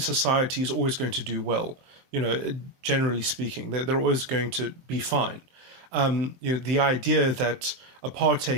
is always going to do well. Generally speaking, they're always going to be fine. The idea that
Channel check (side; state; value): left; late; 23 ms